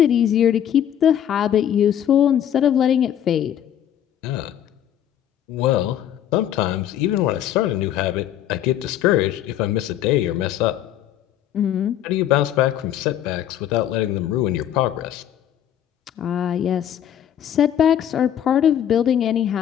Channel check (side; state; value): right; quieter; 10.5 dB